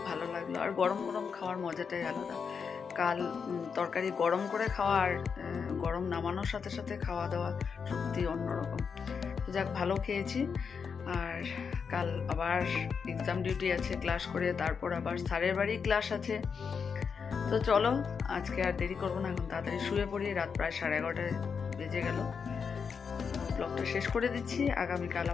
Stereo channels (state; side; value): quieter; right; 6.1 dB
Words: ভালো লাগলো। আর গরম গরম খাওয়ার মজাটাই আলাদা। কাল তরকারি গরম করে খাওয়া আর গরম নামানোর সাথে সাথে খাওয়া দাওয়া সত্যি অন্যরকম। যাক, ভালো খেয়েছি। আর কাল আবার এক্সাম ডিউটি আছে, ক্লাস করে তারপর আবার স্যারের বাড়ি ক্লাস আছে। তো চলো আজকে আর দেরি করবো না, এখন তাড়াতাড়ি শুয়ে পড়ি। রাত প্রায় 11:30 বেজে গেল। ব্লগটা শেষ করে দিচ্ছি। আগামীকাল